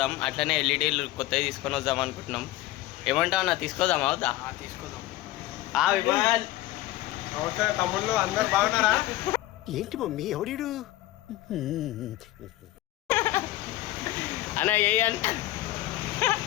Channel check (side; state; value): right; quieter; 16.3 dB